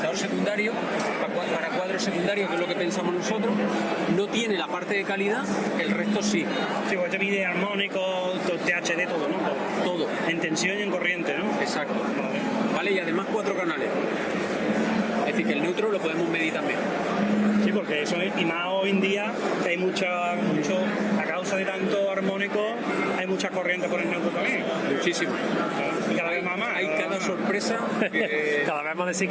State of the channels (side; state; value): both; identical; correlation 1.00